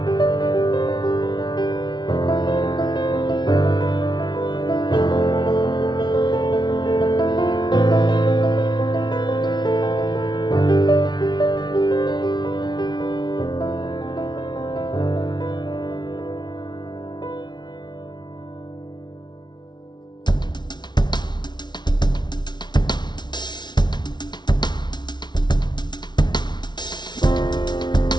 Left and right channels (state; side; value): late; right; 0.21 ms